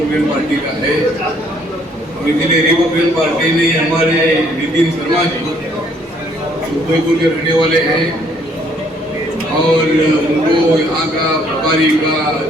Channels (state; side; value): normal; both; correlation 0.65